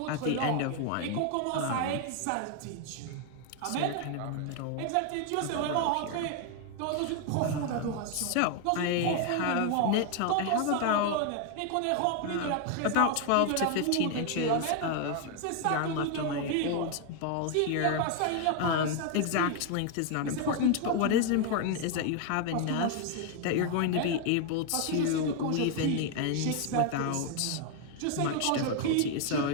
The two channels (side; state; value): both; different; correlation 0.01